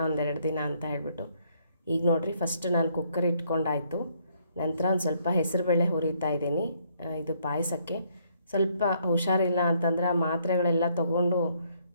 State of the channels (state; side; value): inverted; both; correlation -0.69